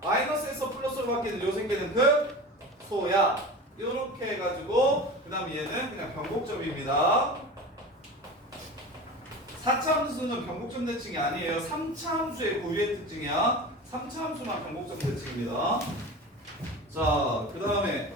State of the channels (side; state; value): both; normal; correlation 0.32